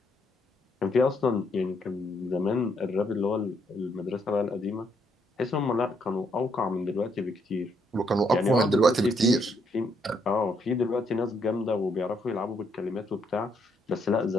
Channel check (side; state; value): both; normal; correlation 0.73